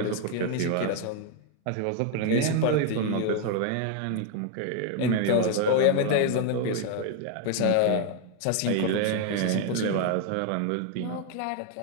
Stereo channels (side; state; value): both; different; correlation 0.00